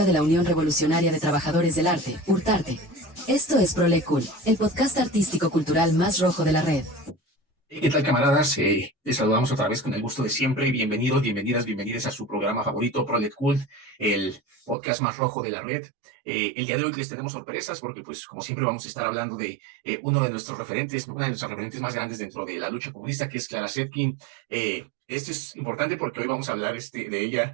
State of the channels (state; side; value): drops out; left; at 14.8 s